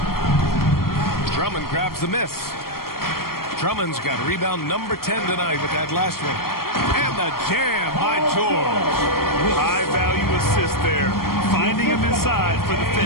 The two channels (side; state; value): right; late; 0.93 ms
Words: Drummond grabs the miss. Drummond's got rebound number 10 tonight with that last one. And the jam by George. High value assist there. Finding him inside for the